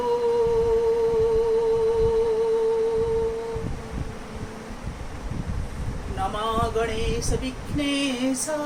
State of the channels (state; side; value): identical; both; correlation 1.00